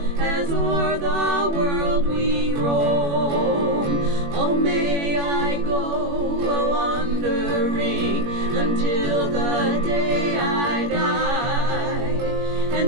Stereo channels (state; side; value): late; left; 21 ms